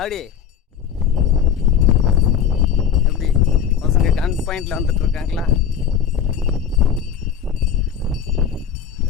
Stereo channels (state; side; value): quieter; right; 8.1 dB